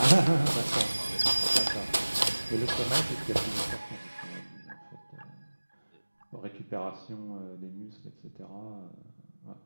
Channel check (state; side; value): inverted; both; correlation -1.00